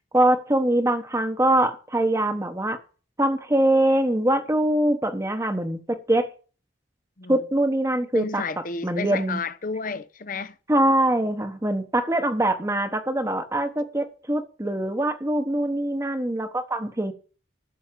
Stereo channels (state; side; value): normal; both; correlation 0.75